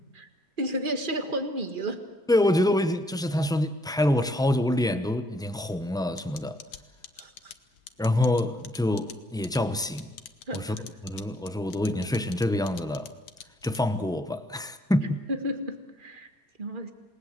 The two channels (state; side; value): normal; both; correlation 0.69